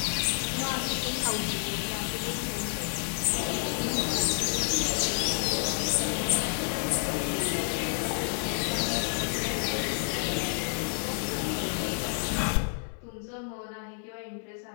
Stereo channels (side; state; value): right; silent; 58 dB below the other